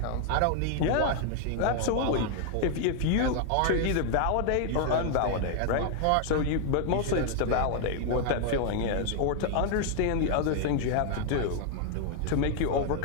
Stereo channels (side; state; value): both; different; correlation 0.00